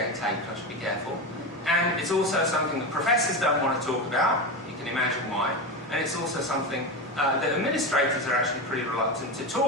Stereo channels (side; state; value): both; normal; correlation 0.18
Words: taped, I should be careful. And it's also something that professors don't want to talk about. You can imagine why. And it's also something that administrators are actually pretty reluctant to